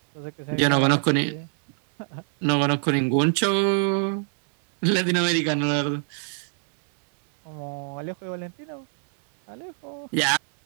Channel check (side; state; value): left; silent; 62 dB below the other